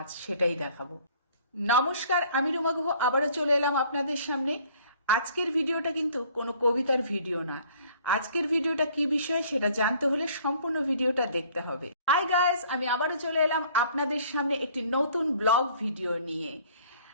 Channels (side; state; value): both; inverted; correlation -0.56